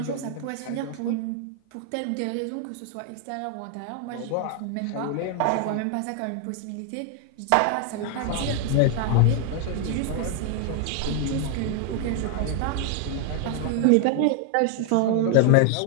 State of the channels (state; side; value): different; both; correlation 0.00